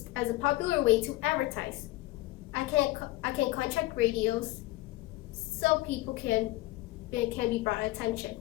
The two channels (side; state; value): right; quieter; 18.1 dB